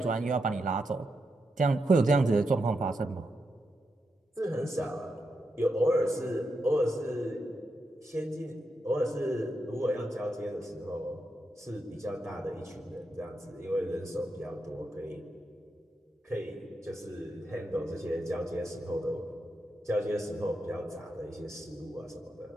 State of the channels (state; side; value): normal; both; correlation 0.85